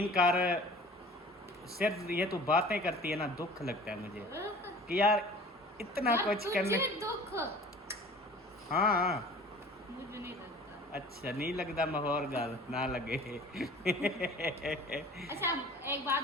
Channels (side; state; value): both; normal; correlation 0.45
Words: कर, सिर्फ ये तू बातें करती है ना, दुख लगता है मुझे कि यार इतना यार, कुछ करने। तुझे दुख? हाँ मुझे नहीं लगता। अच्छा नहीं लगता, माहौल गल ना लगे। अच्छा एक बात